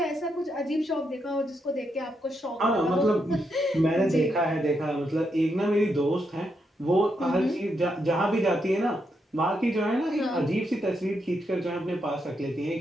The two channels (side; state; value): both; normal; correlation 0.81